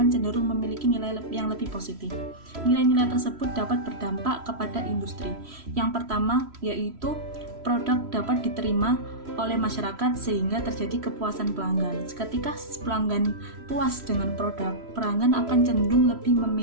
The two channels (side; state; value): left; late; 3.1 ms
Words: cenderung memiliki nilai yang lebih positif. Nilai-nilai tersebut dapat berdampak kepada industri. Yang pertama yaitu produk dapat diterima oleh masyarakat sehingga terjadi kepuasan pelanggan. Ketika pelanggan puas dengan produk, pelanggan akan cenderung lebih